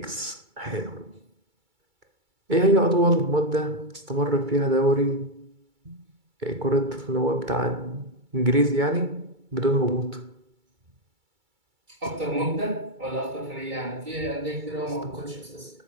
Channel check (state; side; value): late; left; 2.3 ms